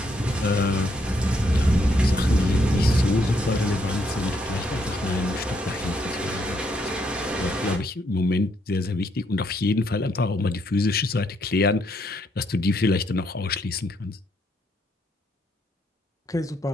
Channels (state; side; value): normal; both; correlation 0.74